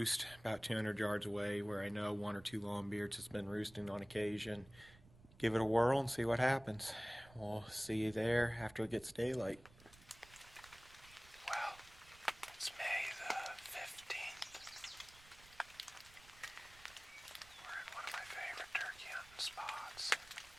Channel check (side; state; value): right; noise; rumble, 23 dB below the sound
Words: about 200 yards away, where I know one or two longbeards has been roosting on occasion. Give it a whirl and see what happens. We'll see you there after it gets daylight. Well, it's May the 15th. We're at one of my favorite turkey hunting spots.